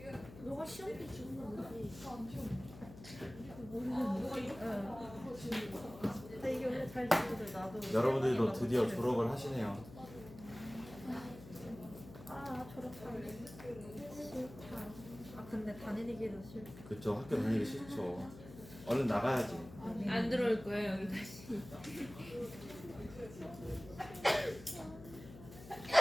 너가 시험 때 주는 거지. 모르겠는데. 근데 이게 원래 잘 지거든. 나도. 여러분들도 드디어 졸업을 하시네요. 아 졸업하기 싫다. 아 근데 다니기도 싫다. 그쵸, 학교 다니기 싫죠. 얼른 나가야지. 안 들어올 거예요 여기까지.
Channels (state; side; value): noise; left; hum, 16 dB below the sound